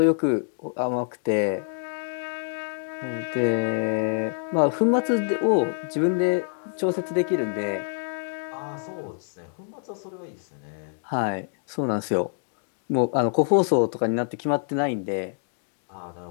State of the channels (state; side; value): silent; right; digital silence